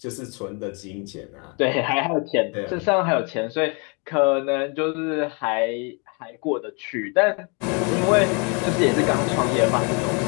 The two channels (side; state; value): right; quieter; 33.8 dB